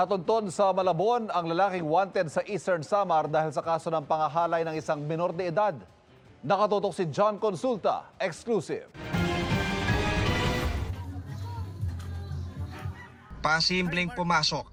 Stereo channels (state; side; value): identical; both; correlation 1.00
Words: sa Malabon ang lalaking wanted sa Eastern Samar dahil sa kaso ng pangahalay ng isang minor de edad. Nakatutok si John Consulta, exclusive. Pasimpleng pumasok